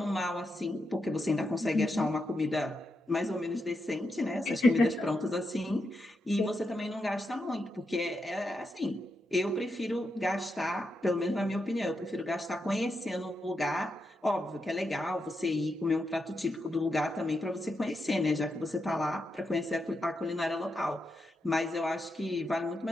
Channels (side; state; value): both; normal; correlation 0.85